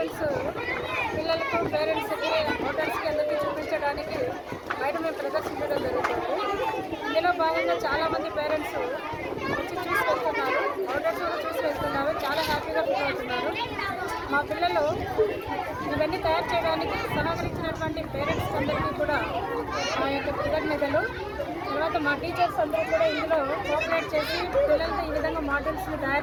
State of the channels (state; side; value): identical; both; correlation 1.00